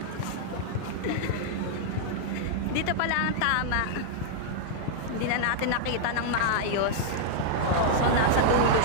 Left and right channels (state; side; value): different; both; correlation -0.01